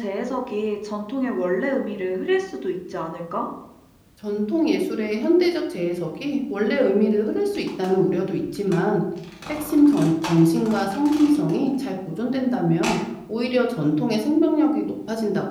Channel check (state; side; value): identical; both; correlation 1.00